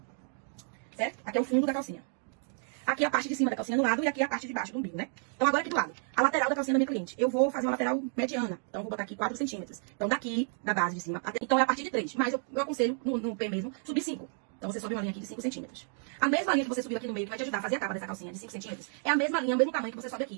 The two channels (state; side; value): silent; left; 56 dB below the other